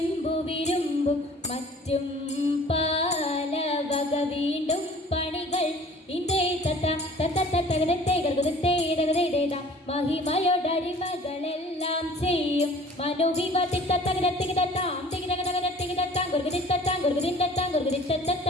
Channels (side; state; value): both; normal; correlation 0.48